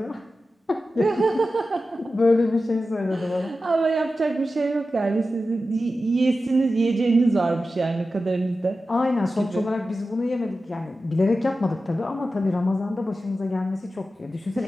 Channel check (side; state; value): both; normal; correlation 0.93